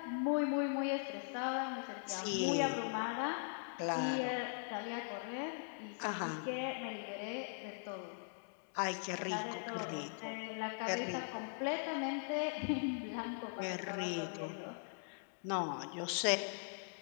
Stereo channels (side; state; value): right; silent; digital silence